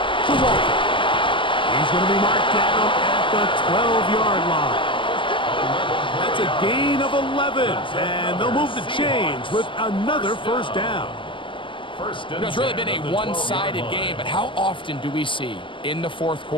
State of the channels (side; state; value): right; late; 0.25 ms